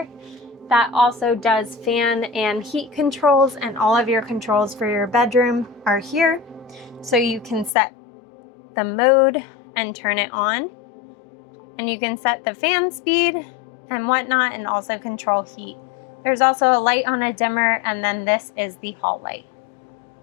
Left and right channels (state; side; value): drops out; right; at 7.7 s